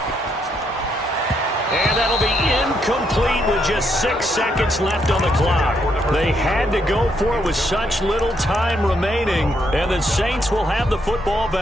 And that'll be incomplete with just 6 seconds left on the clock. They had to go for it with such little time remaining, and the Saints will have the football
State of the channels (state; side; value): normal; both; correlation 0.76